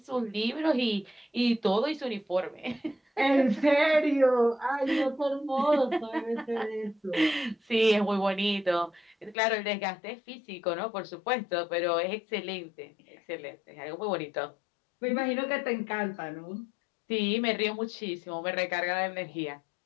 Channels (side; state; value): right; drops out; at 9.3 s